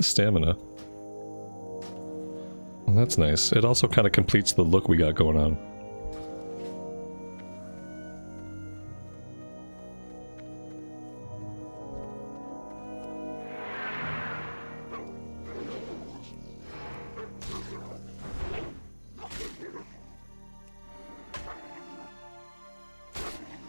stamina. Well, that's nice. It also kind of completes the look we got going on.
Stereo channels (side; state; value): both; inverted; correlation -1.00